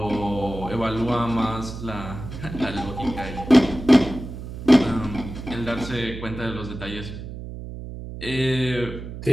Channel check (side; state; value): right; noise; hum, 10 dB below the sound